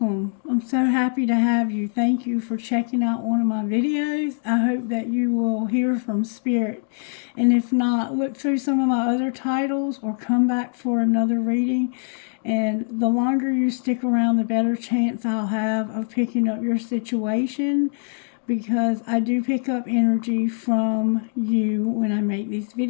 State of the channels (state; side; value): silent; right; 64 dB below the other